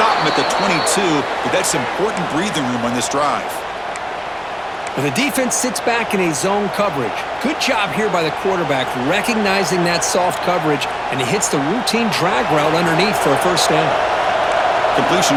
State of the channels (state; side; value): identical; both; correlation 1.00